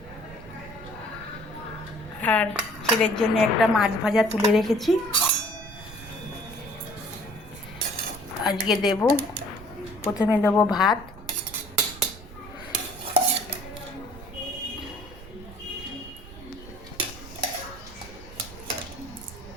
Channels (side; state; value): right; noise; rumble, 16 dB below the sound